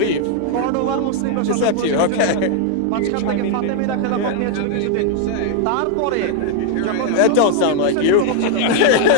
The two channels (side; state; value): both; different; correlation 0.00